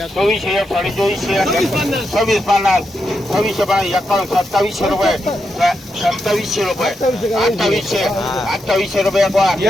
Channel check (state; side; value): normal; both; correlation 0.84